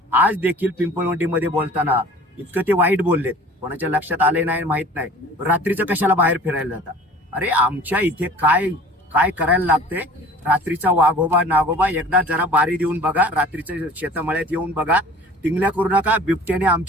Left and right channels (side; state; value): both; normal; correlation 0.45